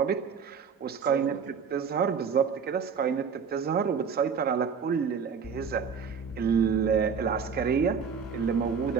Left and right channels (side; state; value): left; quieter; 6.2 dB